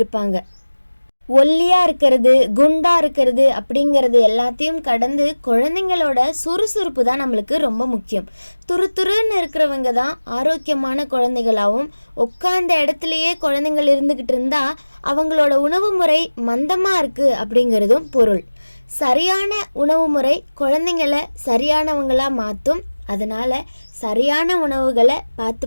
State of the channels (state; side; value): inverted; both; correlation -1.00